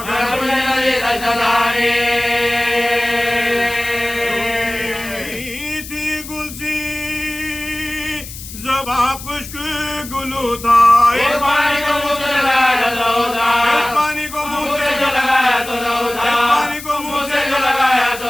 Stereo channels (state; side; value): noise; left; hiss, 13 dB below the sound